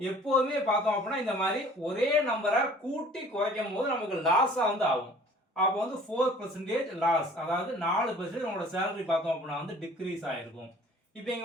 பார்த்தோம் அப்படின்னா இந்த மாதிரி ஒரே நம்பரை கூட்டி குறைக்கும் போது நமக்கு லாஸா வந்து ஆகும். அப்போ வந்து 4% லாஸ், அதாவது 4% உங்களோட சேலரி பார்த்தோம் அப்படின்னா வந்து டிக்ரீஸ் ஆயிருக்கும். இப்போ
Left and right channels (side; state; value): both; normal; correlation 0.50